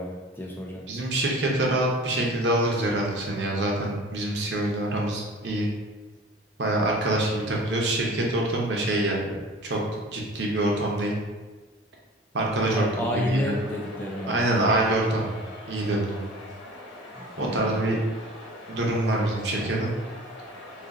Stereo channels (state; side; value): normal; both; correlation 0.43